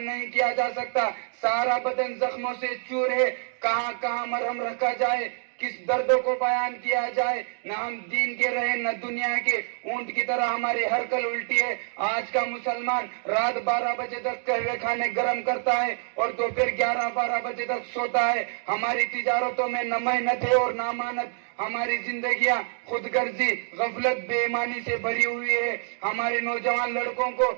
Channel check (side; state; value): left; silent; 61 dB below the other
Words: نہیں کیا جا سکتا، سارا بدن زخموں سے چور ہے، کہاں کہاں مرہم رکھا جائے، کس درد کو بیان کیا جائے، نہ ہم دین کے رہے نہ دنیا کے، اونٹ کی طرح ہماری ہر کل الٹی ہے۔ آج کا مسلمان رات 12 بجے تک قہوے کھانے گرم کرتا ہے اور دوپہر 11-12 بجے تک سوتا ہے۔ ہماری تجارتوں میں نہ محنت ہے اور نہ امانت، ہماری زندگیاں خود غرضی، غفلت، بے ایمانی سے بھری ہوئی ہے۔ ہمارے نوجوان لڑکوں کو